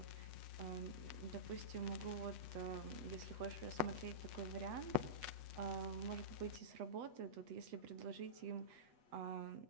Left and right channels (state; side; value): late; left; 8.1 ms